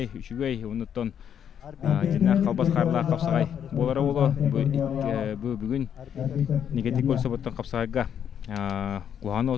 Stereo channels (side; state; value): right; quieter; 8.7 dB